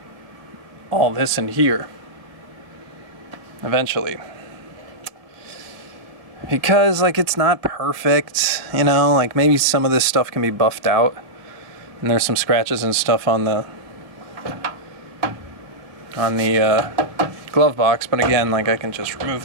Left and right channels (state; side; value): late; left; 1.9 ms